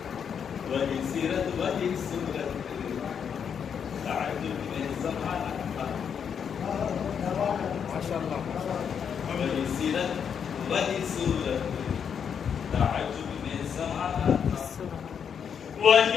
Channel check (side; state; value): right; quieter; 7.4 dB